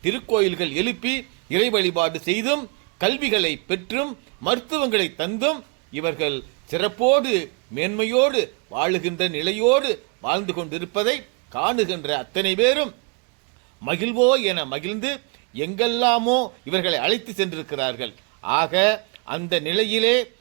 திருக்கோயில்கள் எழுப்பி இறை வழிபாடு செய்தும் கல்விகளை பெற்றும் மருத்துவங்களை தந்தும் இவர்கள் சிறப்போடு மேன்மையோடு வாழுகின்ற நிலையோடு வாழ்ந்து கொண்டிருப்பதை காணுகின்ற அத்தனை பேரும் மகிழ்வோ என மகிழ்ந்து எங்கெல்லாமோ இவர்களை அழைத்து சென்றிருக்கிறார்கள். ஆக அந்த நிலையிலே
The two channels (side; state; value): left; quieter; 33.3 dB